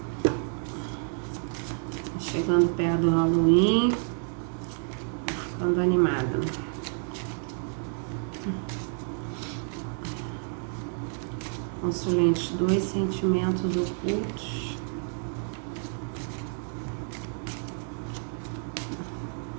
Chegando perto do Halloween. Ficando animada. Consulente 2, sentimentos ocultos.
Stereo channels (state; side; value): silent; left; 58 dB below the other